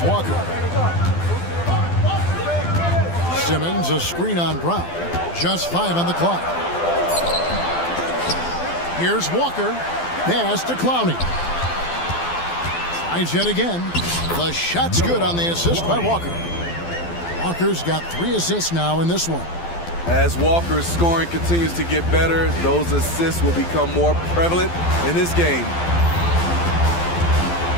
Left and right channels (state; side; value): late; right; 12 ms